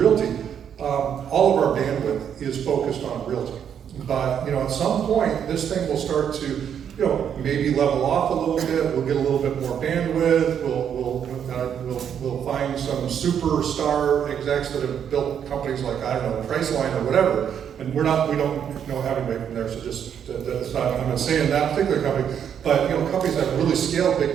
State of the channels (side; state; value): left; quieter; 8.5 dB